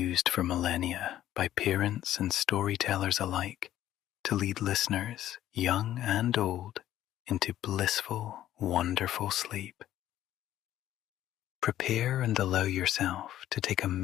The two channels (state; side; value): quieter; right; 12.7 dB